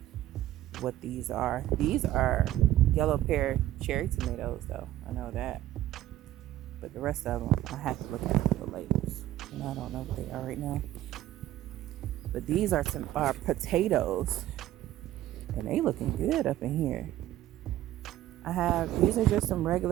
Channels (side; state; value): left; quieter; 13.7 dB